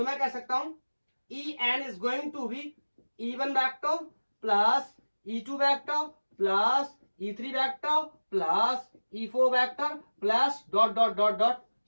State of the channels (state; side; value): inverted; both; correlation -1.00